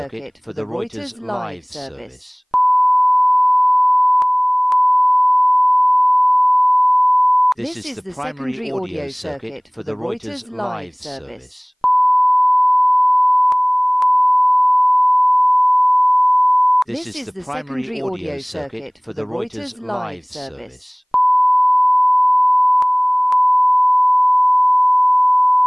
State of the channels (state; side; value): identical; both; correlation 1.00